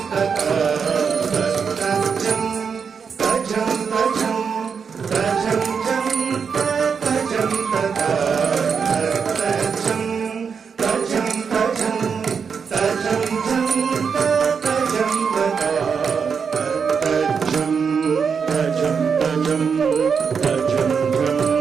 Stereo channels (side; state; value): left; quieter; 6.2 dB